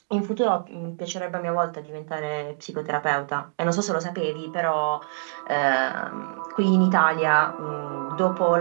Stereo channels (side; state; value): left; silent; digital silence